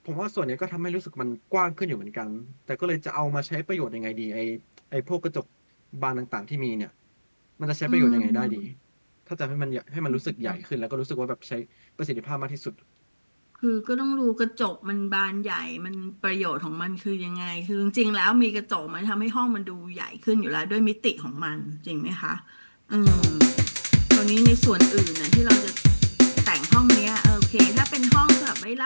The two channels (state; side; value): inverted; both; correlation -1.00